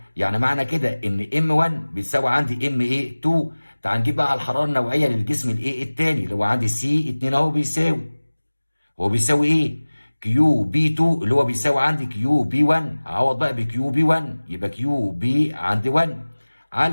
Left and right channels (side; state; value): both; inverted; correlation -1.00